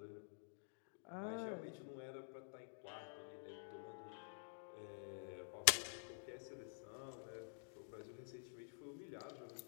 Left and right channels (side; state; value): right; silent; digital silence